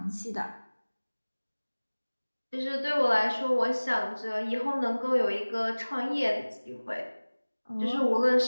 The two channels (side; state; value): both; inverted; correlation -1.00